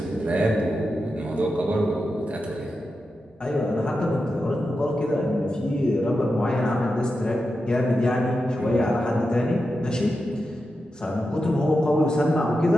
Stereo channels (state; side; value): normal; both; correlation 0.89